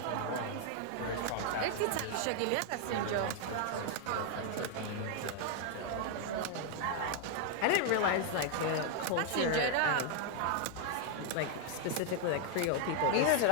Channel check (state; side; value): different; both; correlation -0.01